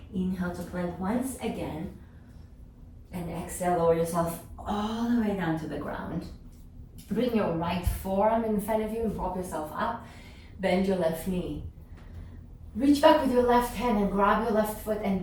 Inhale to plank once again. And exhale, lower yourself all the way down to the ground. Bring your right forearm in front of you and prop yourself up. Bend your left knee. Reach back with your left hand and grab your left foot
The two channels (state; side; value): identical; both; correlation 1.00